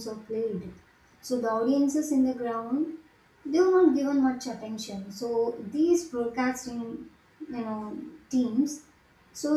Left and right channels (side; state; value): both; identical; correlation 1.00